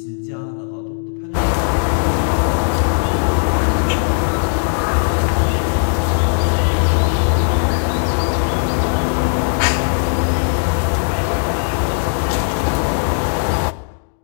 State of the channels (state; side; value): silent; right; digital silence